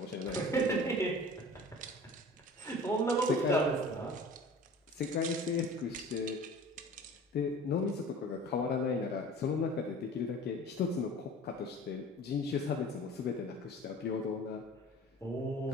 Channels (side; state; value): both; normal; correlation 0.43